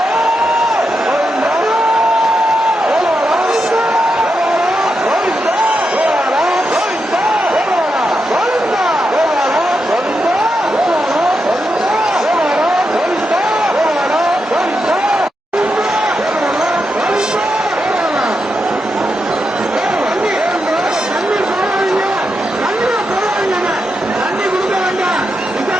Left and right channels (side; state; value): both; normal; correlation 0.86